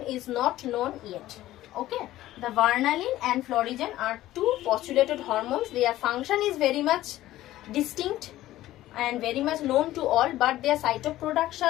is not known yet. Okay, the varnalin and florigen are two postulated hormones. Their function is very much distinct and very much known to all, but their site of production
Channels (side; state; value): right; quieter; 15.0 dB